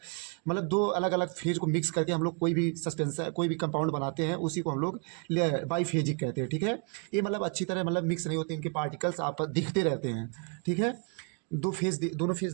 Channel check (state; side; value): quieter; left; 37.8 dB